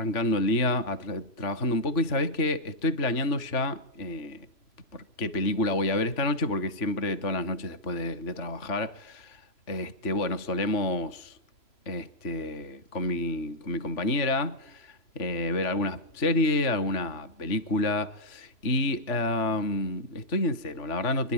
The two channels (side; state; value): right; late; 3.4 ms